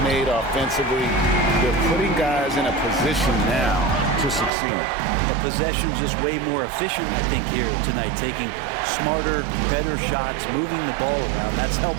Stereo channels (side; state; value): left; drops out; at 4.5 s